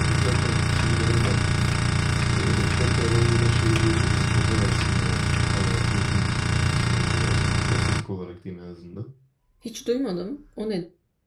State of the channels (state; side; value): identical; both; correlation 1.00